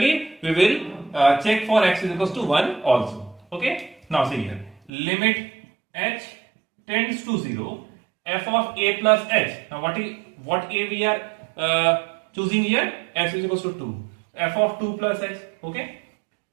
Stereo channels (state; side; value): drops out; left; at 4.9 s